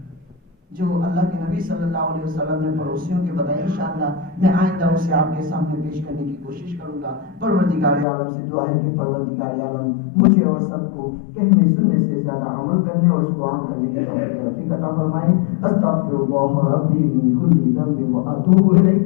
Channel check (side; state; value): right; drops out; at 8.1 s